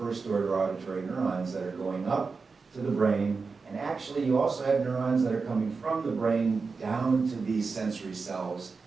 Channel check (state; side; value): quieter; left; 4.6 dB